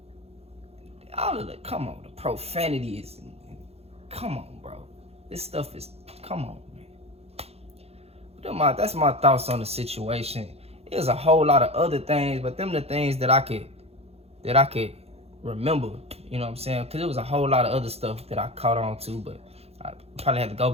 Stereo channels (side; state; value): left; late; 0.29 ms